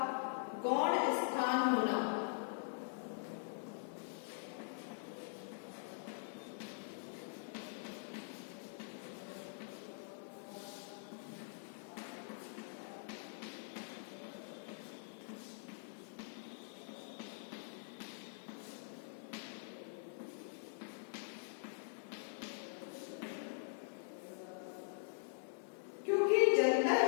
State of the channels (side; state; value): right; silent; digital silence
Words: गौण स्थान होना। क्योंकि जनता